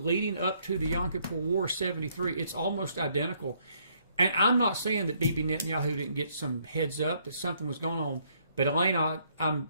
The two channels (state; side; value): inverted; both; correlation -0.69